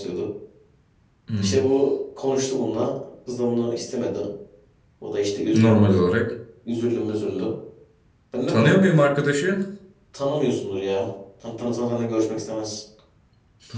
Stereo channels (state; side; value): identical; both; correlation 1.00